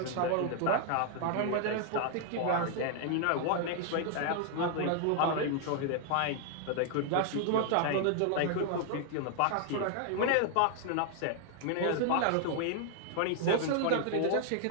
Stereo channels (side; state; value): both; different; correlation 0.00